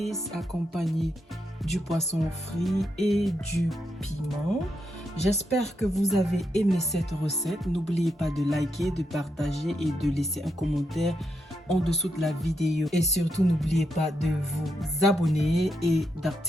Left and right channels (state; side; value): normal; both; correlation 0.82